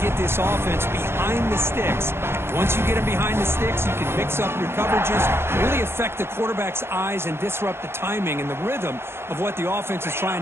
get this offense behind the sticks. Once you get them behind the sticks, you can mix up your coverages, really affect the quarterback's eyes and disrupt the timing and the rhythm of what the offense is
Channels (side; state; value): left; late; 0.12 ms